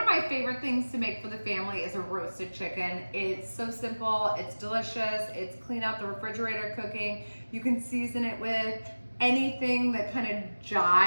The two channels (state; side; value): inverted; both; correlation -1.00